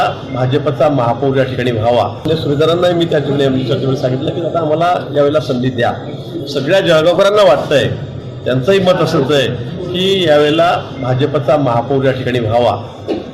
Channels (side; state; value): both; identical; correlation 1.00